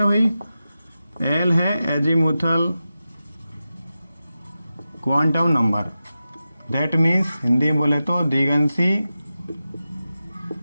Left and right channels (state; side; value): inverted; both; correlation -0.92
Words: भाई, l है azimuthal quantum number. That means Hindi में बोले तो दिगंशी